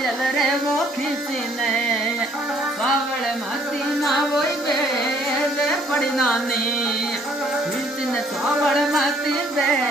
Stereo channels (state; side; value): normal; both; correlation 0.62